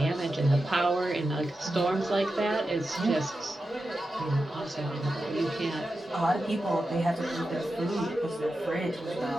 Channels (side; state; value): both; normal; correlation 0.91